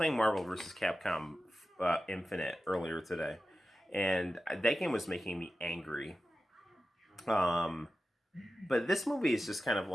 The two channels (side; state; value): both; normal; correlation 0.93